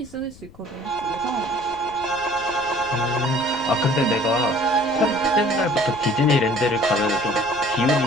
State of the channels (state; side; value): noise; left; rumble, 21 dB below the sound